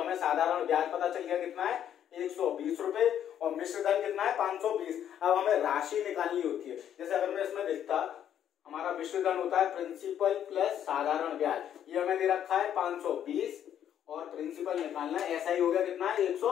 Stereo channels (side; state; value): right; quieter; 10.0 dB